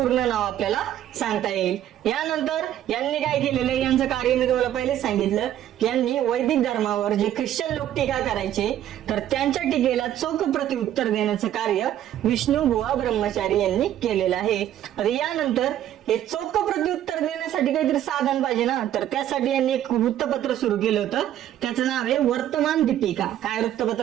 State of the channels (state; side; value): quieter; left; 11.7 dB